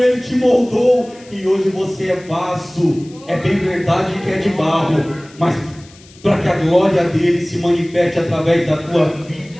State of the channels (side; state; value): left; noise; hiss, 25 dB below the sound